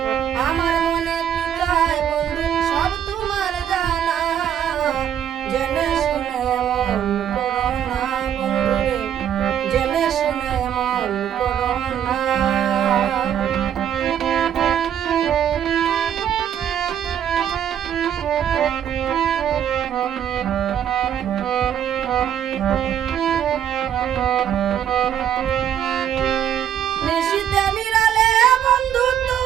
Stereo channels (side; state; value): left; quieter; 9.6 dB